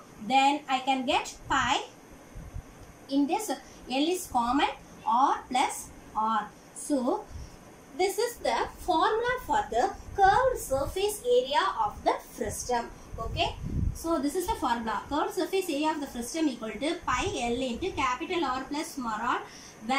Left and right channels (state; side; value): identical; both; correlation 1.00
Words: Then I can get pi. In this L is common, R plus R. So this is the formula for the curved surface area of the frustum. Okay. So this is the formula. Curved surface area of the frustum equal to pi L into capital R plus small r,